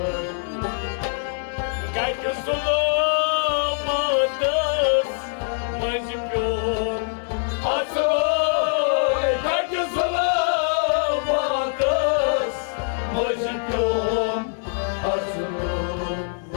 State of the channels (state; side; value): silent; right; digital silence